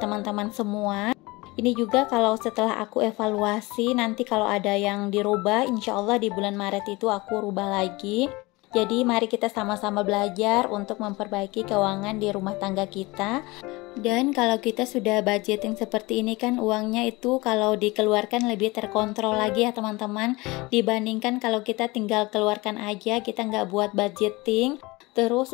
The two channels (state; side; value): quieter; right; 23.0 dB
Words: semua. Ini juga kalau setelah aku evaluasi, nanti kalau ada yang dirubah, insya Allah di bulan Maret itu aku rubah lagi. Jadi mari kita sama-sama belajar untuk memperbaiki keuangan di rumah tangga kita. Dan kalau kita sudah budgeting seperti ini kan uangnya itu kalau dikeluarkan lebih terkontrol lagi ya teman-teman. Dibandingkan kalau kita tinggal keluarkan aja, kita nggak buat budgeting. Terus